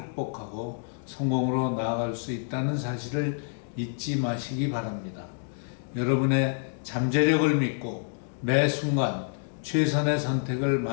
성공으로 나아갈 수 있다는 사실을 잊지 마시기 바랍니다. 여러분의 잠재력을 믿고 매 순간 최선의 선택을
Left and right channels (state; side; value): silent; right; digital silence